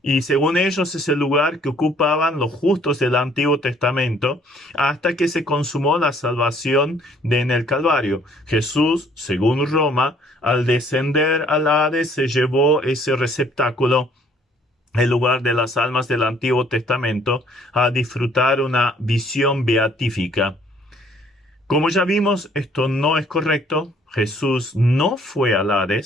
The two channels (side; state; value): both; normal; correlation 0.61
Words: Y según ellos es el lugar que ocupaban los justos del Antiguo Testamento hasta que se consumó la salvación en el Calvario. Jesús, según Roma, al descender al Hades se llevó ese receptáculo, el lugar de las almas del Antiguo Testamento, a disfrutar una visión beatífica. Como ya vimos, esto no es correcto. Jesús no fue al